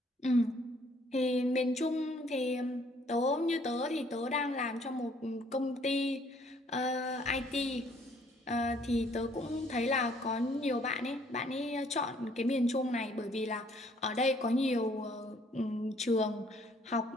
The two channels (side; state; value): both; normal; correlation 0.63